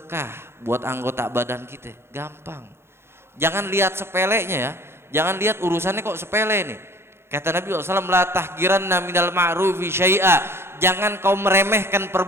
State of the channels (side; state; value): left; late; 0.12 ms